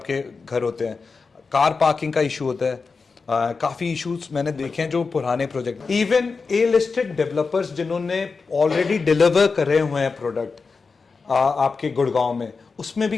घर होते हैं। कार पार्किंग का इशू होता है, काफी इश्यूज मैंने देखे हैं जो पुराने project, even a listed developers जिन्होंने ऑलरेडी डिलीवर करे हुए हैं प्रोडक्ट आपके गुड़गांव में, उसमें भी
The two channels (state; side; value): quieter; right; 4.6 dB